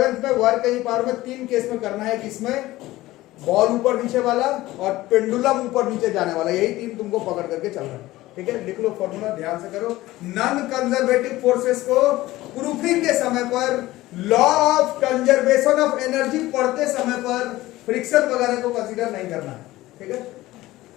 में वर्क की पावर में 3 केस में करना है, किसमें, बॉल ऊपर नीचे वाला और पेंडुलम ऊपर नीचे जाने वाला, यही 3 तुमको पकड़ करके चलना है। ठीक है, लिख लो फॉर्मूला, ध्यान से करो। नॉन कंजर्वेटिव फोर्सेस को प्रूफिंग के समय पर, law of conservation of energy पढ़ते समय पर फ्रिक्शन वगैरह को कंसीडर नहीं करना है। ठीक है,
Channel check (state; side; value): quieter; right; 17.3 dB